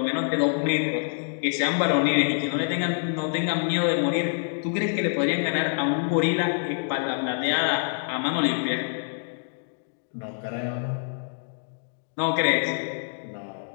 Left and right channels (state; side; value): silent; right; digital silence